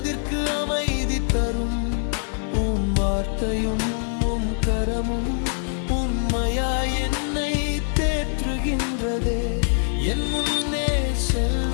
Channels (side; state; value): right; silent; digital silence